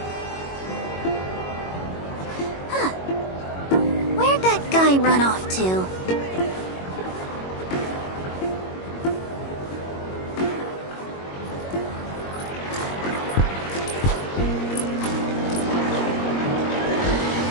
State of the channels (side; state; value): right; late; 22 ms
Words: Where'd that guy run off to?